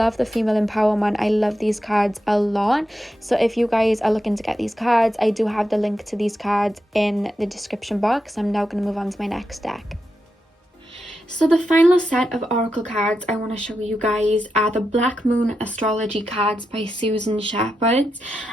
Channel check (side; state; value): both; normal; correlation 0.87